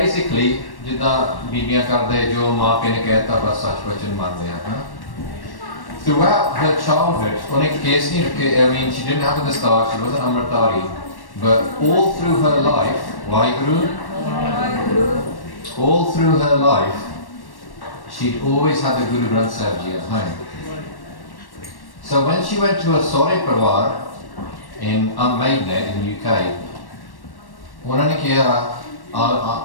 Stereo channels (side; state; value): right; late; 1.1 ms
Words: jida bibiyan karde jo maa pe ne kehta bas sach vachan mande hain. Throughout her childhood, she didn't have the start, she wasn't Amritari, but all through her life, all through her life, she'd always had the Guru Granth Sahib Ji at home. So when she went to a Sore Parwar in Maidenhead in UK,